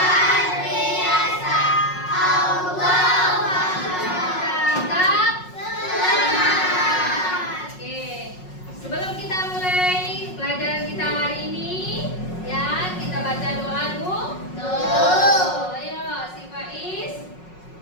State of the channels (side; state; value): right; late; 5.5 ms